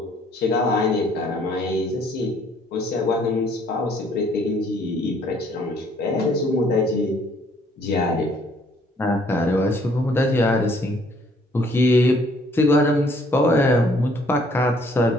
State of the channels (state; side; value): normal; both; correlation 0.63